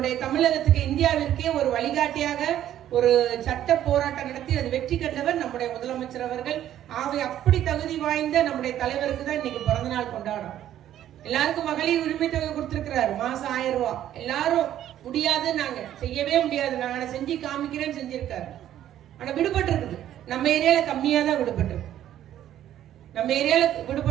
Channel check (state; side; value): quieter; left; 11.7 dB